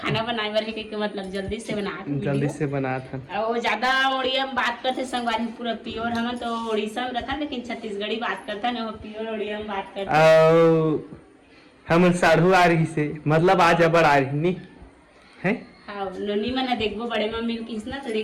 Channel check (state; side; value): identical; both; correlation 1.00